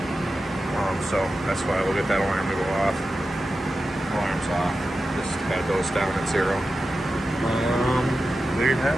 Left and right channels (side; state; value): both; normal; correlation 0.92